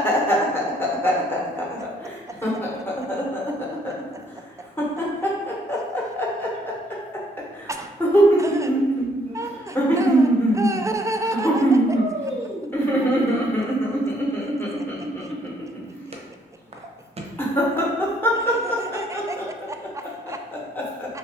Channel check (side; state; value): both; normal; correlation 0.66